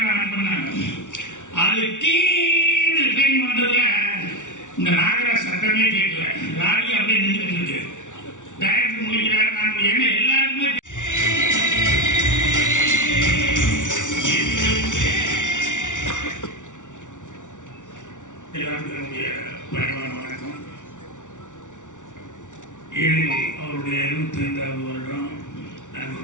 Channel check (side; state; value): right; late; 0.86 ms